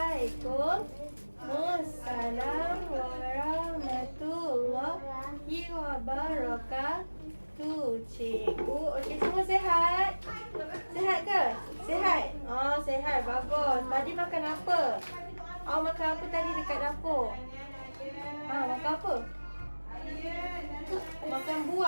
warahmatullahi wabarakatuh. Cikgu, okey, semua sihat? Sihat ke? Sihat? Oh, sihat. Bagus. Tadi makan apa? Awak makan apa tadi dekat dapur? Makan apa? Makan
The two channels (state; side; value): inverted; both; correlation -1.00